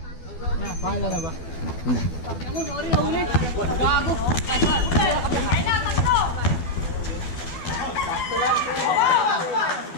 Pahala na ba?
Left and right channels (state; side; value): late; right; 12 ms